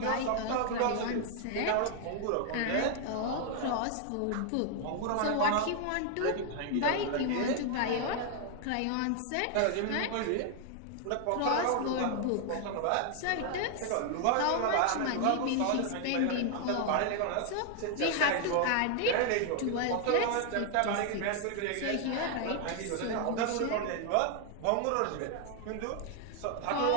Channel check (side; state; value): both; different; correlation 0.00